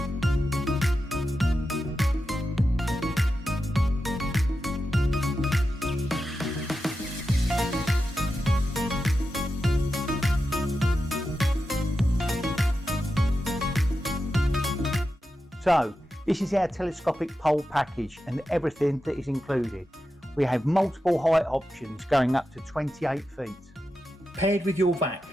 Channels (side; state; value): both; normal; correlation 0.90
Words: So, this is our telescopic pole package and everything that is included. We have multiple height options going up to 28 feet. Paired with your vac,